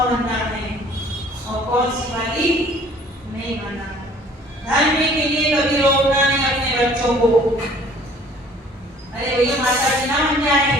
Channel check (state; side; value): normal; both; correlation 0.54